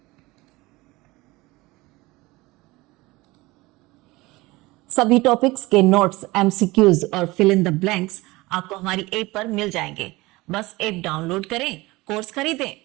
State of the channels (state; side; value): quieter; left; 21.2 dB